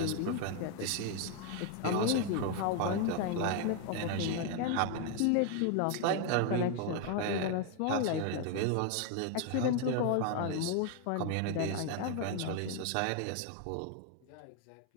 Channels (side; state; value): both; different; correlation 0.01